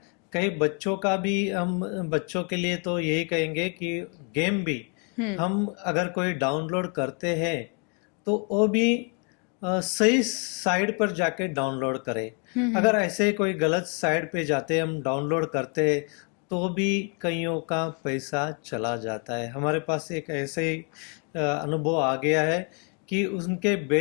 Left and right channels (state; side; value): quieter; right; 36.5 dB